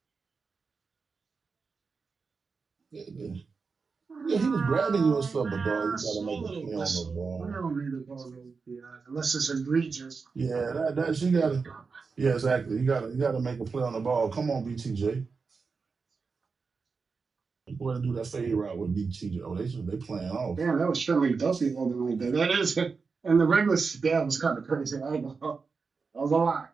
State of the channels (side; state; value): left; quieter; 4.8 dB